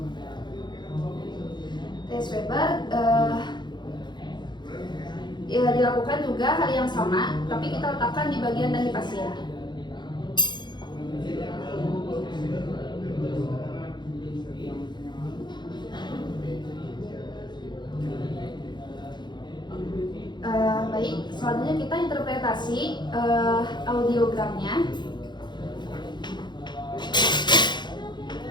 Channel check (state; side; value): late; right; 0.21 ms